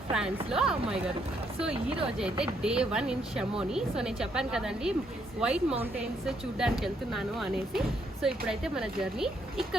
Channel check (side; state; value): both; normal; correlation 0.73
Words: ఫ్రాన్స్లో అమ్మాయి గారు. సో ఈ రోజు అయితే డే 1 ఇన్ షమోని. సో నేను చెప్పాను కదండి వైట్ మౌంటైన్స్ చూడడానికి వెళ్తున్నాను అనేసి. సో ఇప్పుడైతే మన జర్నీ